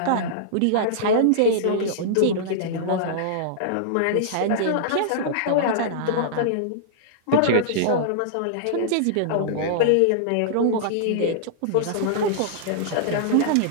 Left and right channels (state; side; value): different; both; correlation -0.02